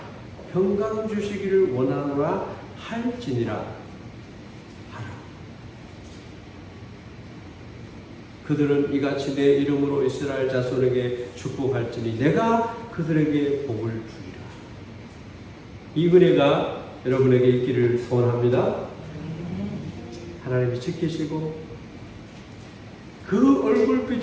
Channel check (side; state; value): both; identical; correlation 1.00